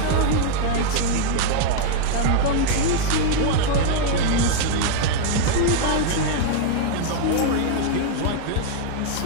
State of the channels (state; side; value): different; both; correlation 0.00